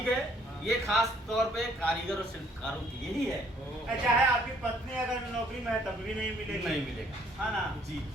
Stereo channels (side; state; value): both; normal; correlation 0.63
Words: है, ये खास तौर पे कारीगर और शिल्पकारों की यही है, चाहे आपकी पत्नी अगर नौकरी में है तब भी नहीं मिलेगी। नहीं मिलेगा। हाँ ना जी